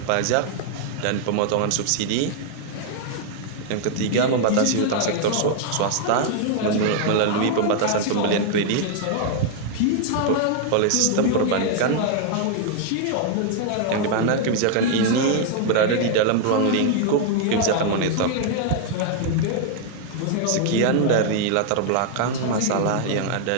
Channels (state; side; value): different; both; correlation 0.00